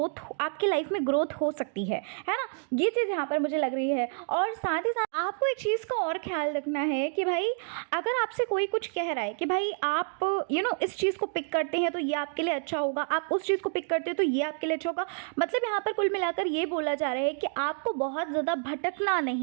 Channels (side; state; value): left; silent; 59 dB below the other